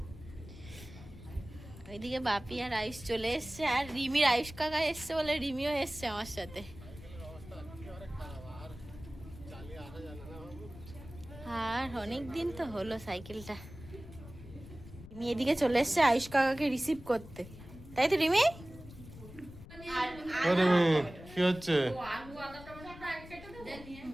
ওইদিকে বাপি আর আয়ুষ চলে এসছে, আর রিমির আয়ুষ কাকা এসছে বলে রিমিও এসছে আমার সাথে। আর অনেক দিন তো হলো সাইকেলটা। রিমি এদিকে চলে এসছে আয়ুষ কাকাকে রিসিভ করতে, তাই তো রিমি? কি হচ্ছে? আলু আদা টমেটোটা আগে কেটে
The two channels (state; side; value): noise; left; rumble, 16 dB below the sound